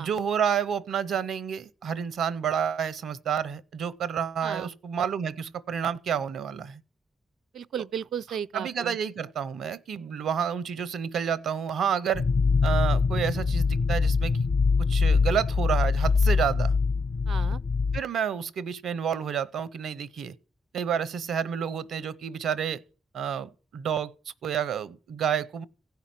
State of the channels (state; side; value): normal; both; correlation 0.71